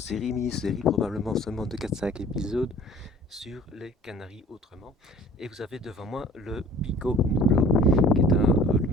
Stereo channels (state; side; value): normal; both; correlation 0.49